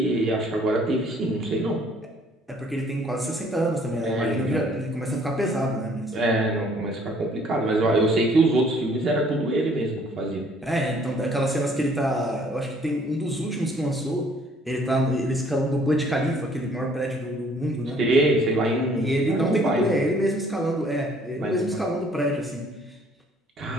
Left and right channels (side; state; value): both; normal; correlation 0.60